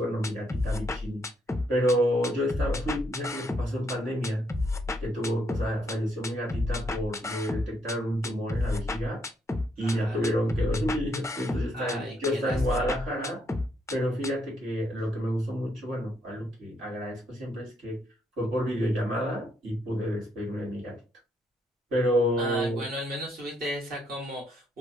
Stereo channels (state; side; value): normal; both; correlation 0.74